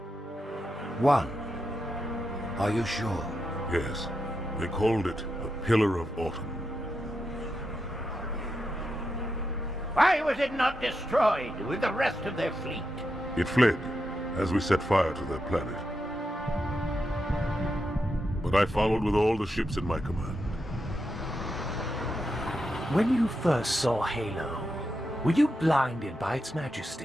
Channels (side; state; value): both; normal; correlation 0.86